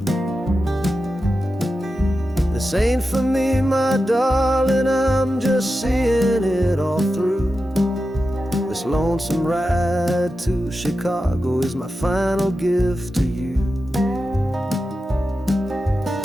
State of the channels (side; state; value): both; normal; correlation 0.91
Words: This ain't for me, my darling, I'm just seeing it all through. This lonesome ride to Chicago is my final gift to you.